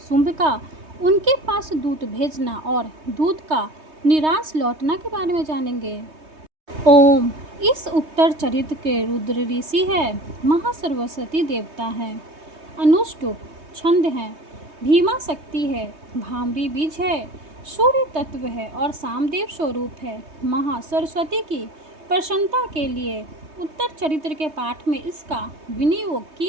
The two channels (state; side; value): late; left; 3.2 ms